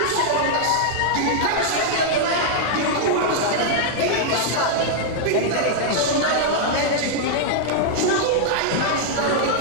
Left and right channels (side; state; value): both; different; correlation -0.01